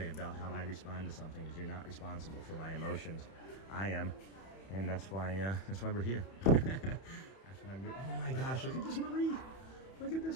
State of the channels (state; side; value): late; right; 31 ms